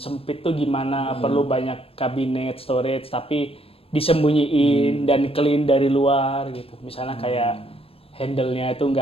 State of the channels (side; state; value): right; late; 0.28 ms